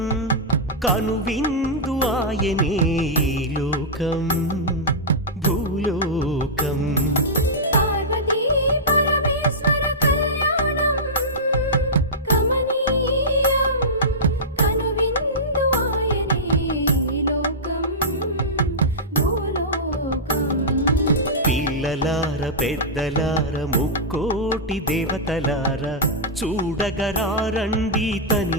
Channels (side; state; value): both; normal; correlation -0.12